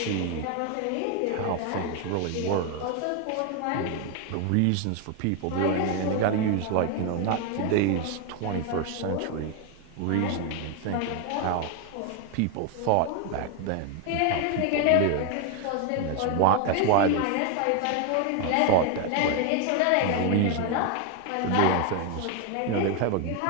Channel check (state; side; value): different; both; correlation 0.01